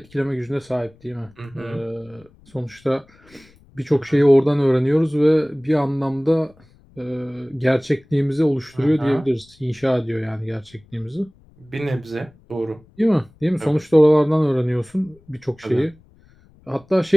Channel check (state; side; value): noise; left; rumble, 29 dB below the sound